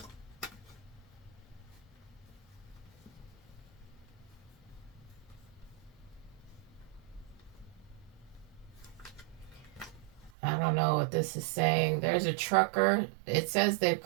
I don't know what this is saying. There's a trucker. It says they've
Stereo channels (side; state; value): left; drops out; at 10.3 s